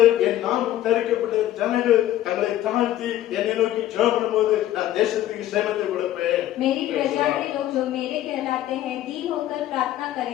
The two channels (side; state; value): right; quieter; 13.4 dB